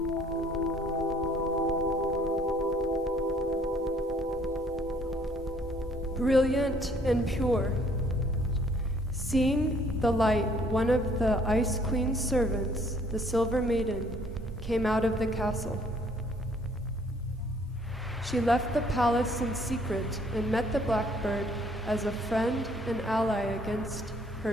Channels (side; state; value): both; normal; correlation 0.61